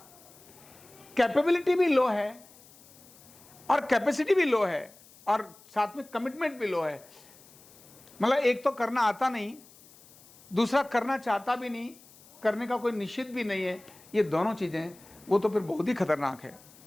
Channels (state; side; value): noise; left; hiss, 24 dB below the sound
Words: कैपेबिलिटी भी लो है और कैपेसिटी भी लो है और साथ में कमिटमेंट भी लो है। मतलब एक तो करना आता नहीं, दूसरा करना चाहता भी नहीं, करने का कोई निश्चित भी नहीं है। ये दोनों चीजें वो तो फिर बहुत ही खतरनाक है।